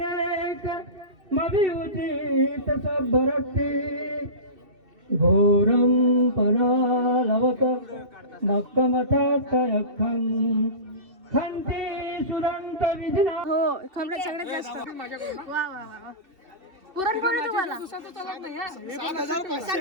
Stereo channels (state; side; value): late; left; 2.7 ms